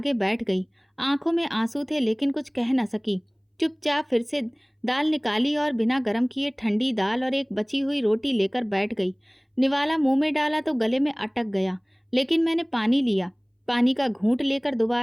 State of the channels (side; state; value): both; identical; correlation 1.00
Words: बैठ गई। आंखों में आंसू थे लेकिन कुछ कह न सकी। चुपचाप फिर से दाल निकाली और बिना गर्म किए ठंडी दाल और एक बची हुई रोटी लेकर बैठ गई। निवाला मुंह में डाला तो गले में अटक गया, लेकिन मैंने पानी लिया। पानी का घूंट लेकर